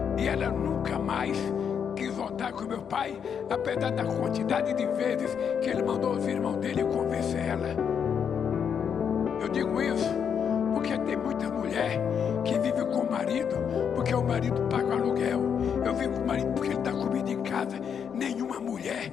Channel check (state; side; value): quieter; right; 7.5 dB